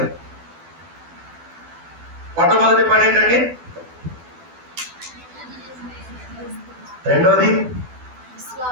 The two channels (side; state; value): left; late; 12 ms